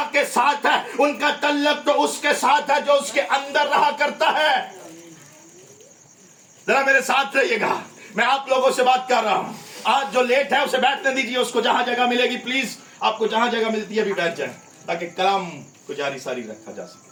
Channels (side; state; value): both; identical; correlation 1.00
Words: के साथ है, उनका तल्लक तो उसके साथ है जो उसके अंदर रहा करता है। जरा मेरे साथ रहिएगा, मैं आप लोगों से बात कर रहा हूं। आज जो लेट है उसे बैठने दीजिए, उसको जहां जगह मिलेगी प्लीज आपको जहां जगह मिलती है अभी बैठ जाए ताकि कलाम को जारी सारी रखा जा